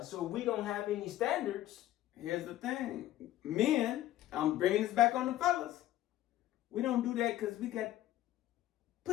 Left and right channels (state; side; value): quieter; right; 14.1 dB